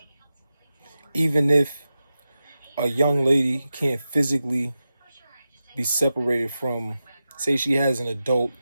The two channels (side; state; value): both; inverted; correlation -0.92